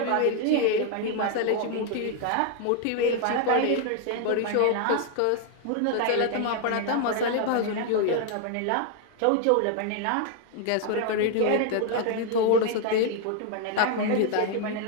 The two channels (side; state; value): both; different; correlation 0.00